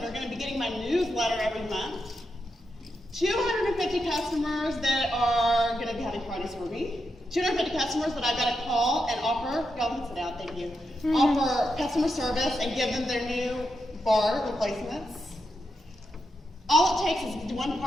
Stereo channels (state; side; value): normal; both; correlation 0.85